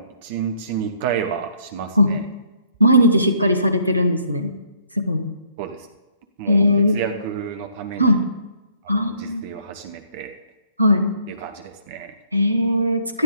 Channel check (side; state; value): both; inverted; correlation -0.64